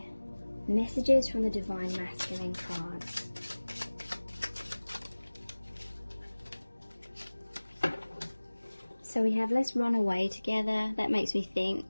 messages from the Divine Masculine cards. So we have let's run away together. That makes me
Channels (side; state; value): both; inverted; correlation -1.00